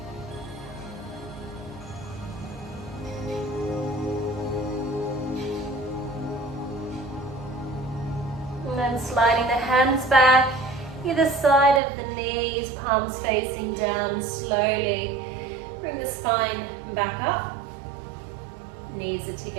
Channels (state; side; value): drops out; left; at 11.8 s